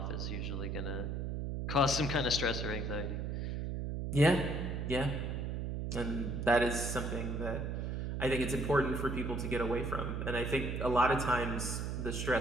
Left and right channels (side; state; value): right; noise; hum, 2 dB below the sound